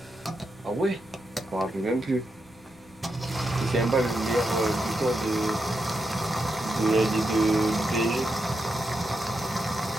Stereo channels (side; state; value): left; noise; rumble, 28 dB below the sound